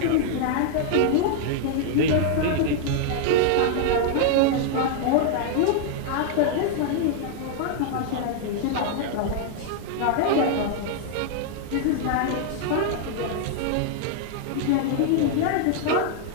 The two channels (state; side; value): different; both; correlation -0.01